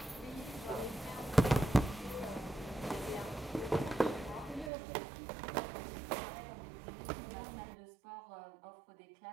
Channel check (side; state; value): left; drops out; at 4.7 s